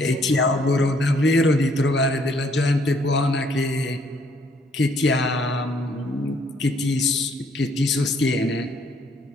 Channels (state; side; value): normal; both; correlation 0.66